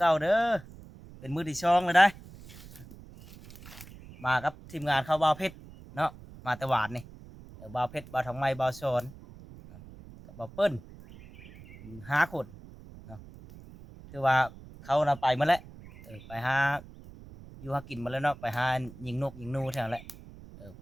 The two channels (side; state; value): right; noise; rumble, 18 dB below the sound